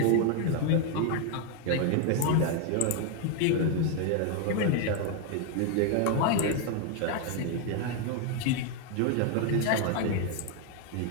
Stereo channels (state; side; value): different; both; correlation 0.01